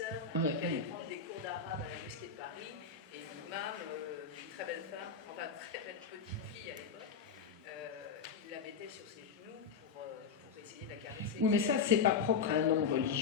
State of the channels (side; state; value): right; quieter; 5.8 dB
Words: qui allait prendre des cours d'arabe à la mosquée de Paris, et l'imam, une très belle femme, enfin très belle petite fille à l'époque, il la mettait sur ses genoux pour essayer de la caresser. Oui, mais ça, c'est pas propre à un homme